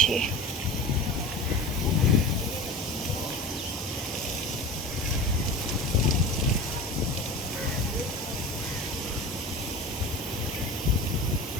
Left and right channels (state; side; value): normal; both; correlation 0.33